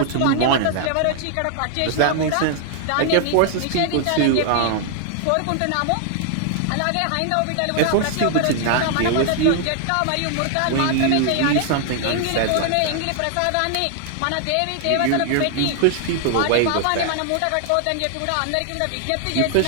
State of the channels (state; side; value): different; both; correlation 0.00